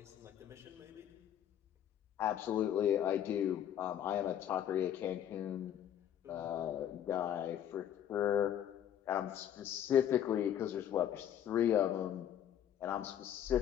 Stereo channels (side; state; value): right; quieter; 10.2 dB